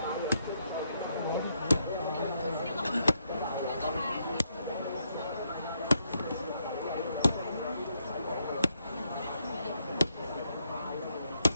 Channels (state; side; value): inverted; both; correlation -0.77